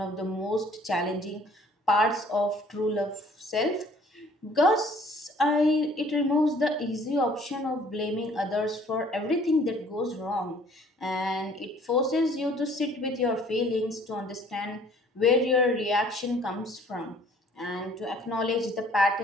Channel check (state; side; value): normal; both; correlation 0.56